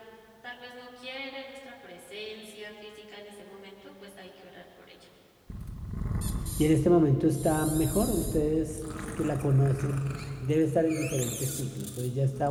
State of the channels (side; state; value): both; identical; correlation 1.00